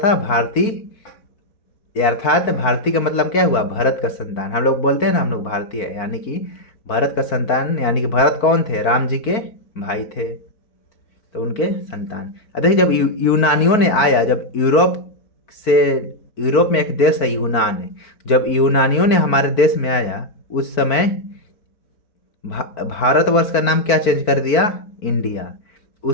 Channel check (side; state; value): right; late; 4.5 ms